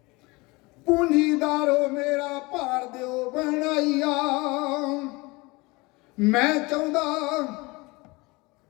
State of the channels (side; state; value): right; quieter; 24.3 dB